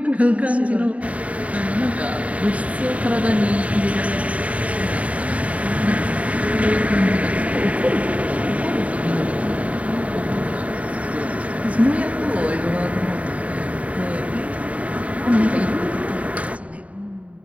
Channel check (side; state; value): left; late; 0.067 ms